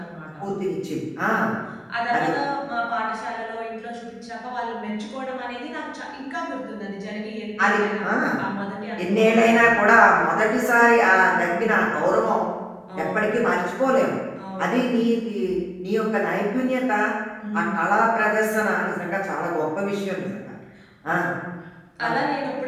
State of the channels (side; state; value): both; identical; correlation 1.00